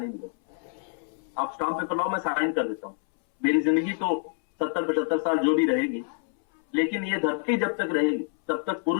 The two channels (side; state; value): right; silent; 60 dB below the other